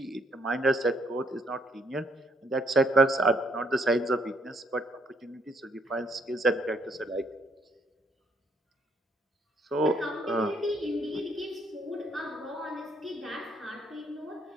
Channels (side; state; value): both; normal; correlation 0.69